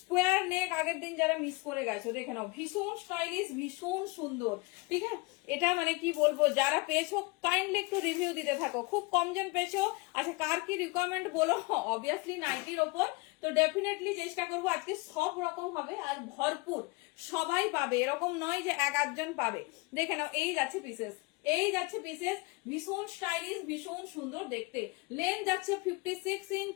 নেক আগের দিন যারা মিস করে গেছো দেখে নাও, ভীষণ স্টাইলিশ, ভীষণ সুন্দর, ঠিক আছে? এটা মানে কি বলবো, যারা পেয়েছো কাইন্ডলি একটু রিভিউ দিতে থাকো, খুব কমজন পেয়েছো। আচ্ছা কার কি রিকোয়ারমেন্ট বলো, অবভিয়াসলি নাইটির ওপর, তো ডেফিনেটলি চেষ্টা করবো আজকে সব রকম হবে আর ভরপুর, সবাই পাবে, এরকম নয় যে 1-8 জন পাবে। দেখে নাও এই যাচ্ছে পিসেস, এই যাচ্ছে পিসেস, ভীষণ স্টাইলিশ, ভীষণ সুন্দর দেখতে। লেন্থ যাচ্ছে 56 ইঞ্চ,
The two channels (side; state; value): right; quieter; 25.9 dB